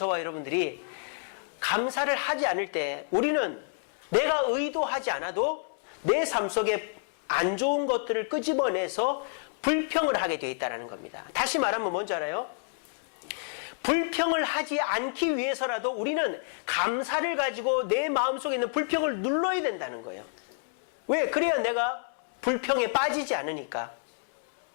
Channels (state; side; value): silent; right; 59 dB below the other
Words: 여러분들이 감사를 하지 않을 때 우리는 내가 의도하지 않아도 내 삶 속에 안 좋은 것들을 끄집어내서 불평을 하게 되어 있다는 겁니다. 다시 말하면 뭔지 알아요? 불평을 하지 않기 위해서라도 우리는 감사를 가지고 내 마음속에 있는 불평을 눌러야 된다는 거예요. 왜? 그래야 내가 불평에 빠지지 않으니까.